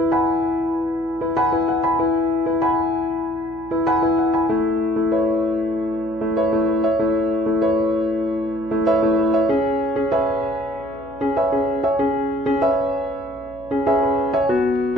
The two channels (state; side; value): noise; left; hum, 22 dB below the sound